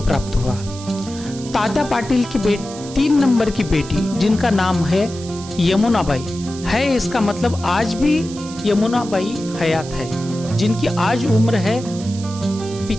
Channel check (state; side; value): noise; right; hiss, 15 dB below the sound